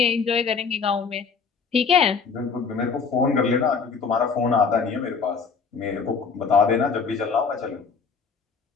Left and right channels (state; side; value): quieter; right; 5.5 dB